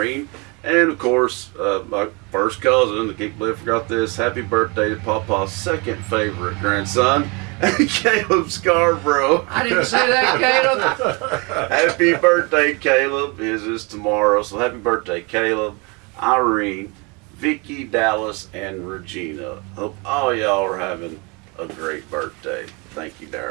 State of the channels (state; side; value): quieter; left; 29.5 dB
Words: And of course, my first cousin, I can't believe I forgot this. Happy birthday to Papa's second favorite grandson, Caleb Scarborough. I didn't say that, Caleb. Happy birthday, Caleb. His is tomorrow. So happy birthday, Caleb, Irene, Vicki, Dallas, and Regina. Hope all y'all are having a great birthday. Thank you,